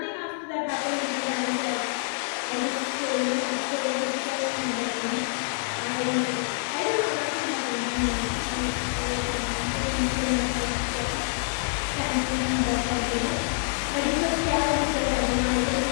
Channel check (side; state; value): right; silent; 60 dB below the other